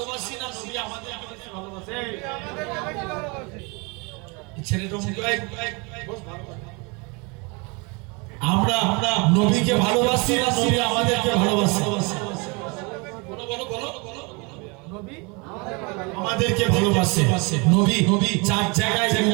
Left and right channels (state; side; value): quieter; left; 29.6 dB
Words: না নবী আমাদেরকে বেশি ভালোবাসে? ছেলেটা আমরা নবীকে ভালোবাসি না নবী আমাদেরকে ভালোবাসে? নবী আমাদেরকে ভালোবাসে। নবী চার জায়গায়